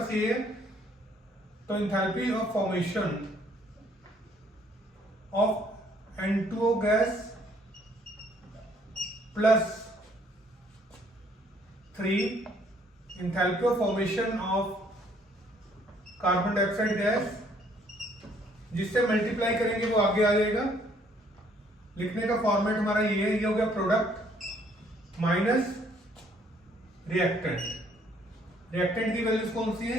ये है, तो enthalpy of formation of N2O gas plus 3 enthalpy of formation of carbon dioxide gas, जिससे मल्टीप्लाई करेंगे वो आगे आ जाएगा। लिखने का फॉर्मेट हमारा ये हो गया, प्रोडक्ट माइनस रिएक्टेंट। रिएक्टेंट की वैल्यूज कौन सी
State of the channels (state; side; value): normal; both; correlation 0.64